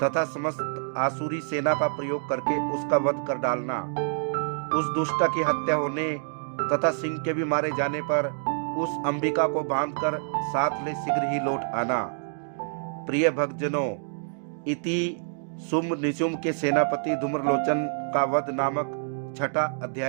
समस्त आसुरी सेना का प्रयोग करके उसका वध कर डालना। उस दुष्ट की हत्या होने तथा सिंह के भी मारे जाने पर उस अंबिका को बांधकर साथ ले शीघ्र ही लौट आना। प्रिय भक्तजनों, इति शुंभ निशुंभ के सेनापति धूम्रलोचन का वध नामक 6वां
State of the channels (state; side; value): silent; left; digital silence